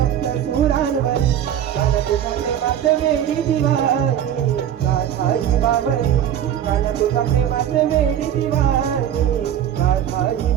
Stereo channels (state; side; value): quieter; left; 10.2 dB